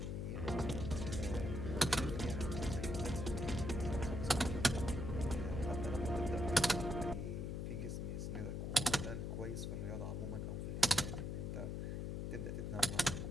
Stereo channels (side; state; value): left; noise; hum, 3 dB below the sound